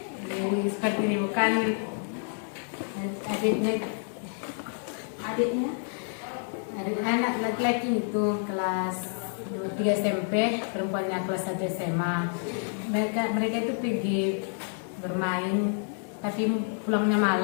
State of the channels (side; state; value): right; silent; 56 dB below the other